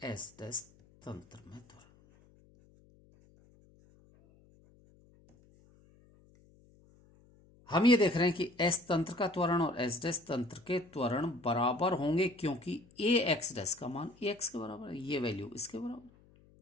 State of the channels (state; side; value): noise; left; hum, 28 dB below the sound